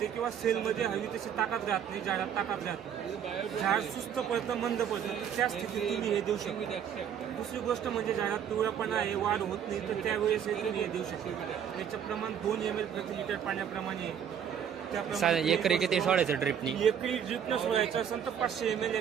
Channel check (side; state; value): left; quieter; 8.6 dB